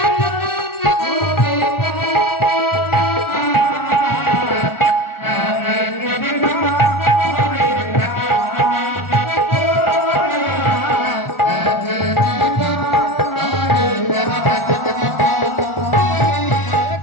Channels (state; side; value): late; right; 1.4 ms